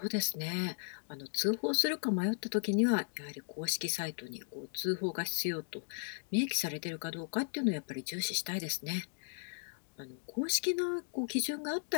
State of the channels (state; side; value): silent; right; digital silence